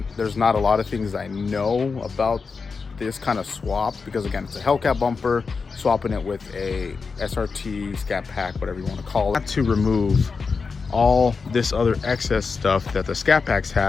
there's not a lot of things I know about this kind of swap, because again, it's a Hellcat bumper, swapping it with a SRT, Scat Pack, whatever you want to call it, to remove all this other excess stuff that the Scat Packs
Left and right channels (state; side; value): quieter; right; 4.9 dB